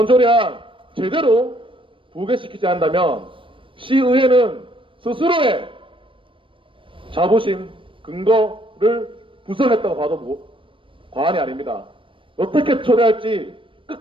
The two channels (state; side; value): late; left; 0.25 ms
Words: 조례안 제대로 부결시키지 않는다면 시의회는 스스로의 자부심, 근거를 부정했다고 봐도 과언이 아닙니다. 어떻게 처리할지